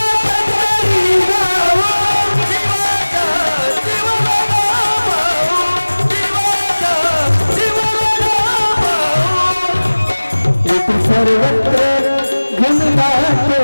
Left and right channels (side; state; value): both; inverted; correlation -1.00